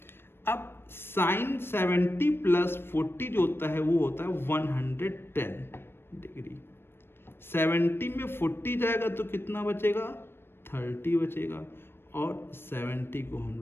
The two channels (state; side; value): late; right; 0.11 ms